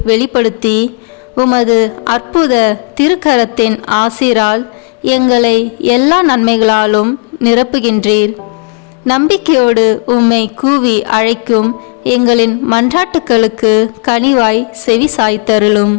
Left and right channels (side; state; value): right; quieter; 38.7 dB